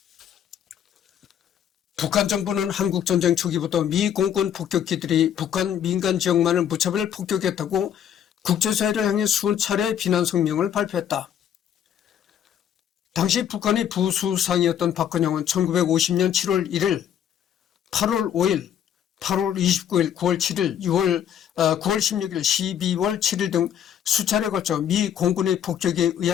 북한 정부는 한국전쟁 초기부터 미 공군 폭격기들이 북한 민간 지역만을 무차별 폭격했다고 국제사회를 향해 수차례 비난 성명을 발표했다. 당시 북한의 부수상이었던 박근영은 1950년 7월 1일, 8월 5일, 8월 29일, 9월 7일, 9월 16일, 12월 7일 등 수차례 걸쳐 미 공군의 폭격에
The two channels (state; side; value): quieter; right; 9.6 dB